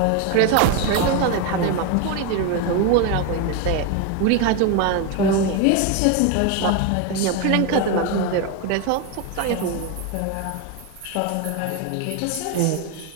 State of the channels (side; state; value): both; different; correlation 0.02